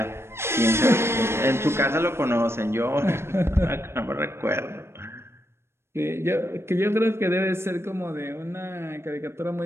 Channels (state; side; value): late; left; 0.12 ms